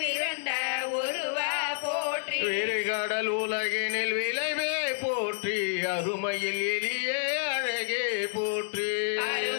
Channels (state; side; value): silent; right; 59 dB below the other